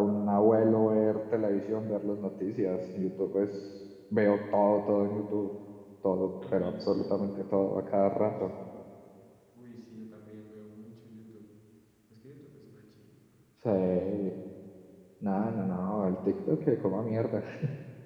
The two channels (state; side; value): identical; both; correlation 1.00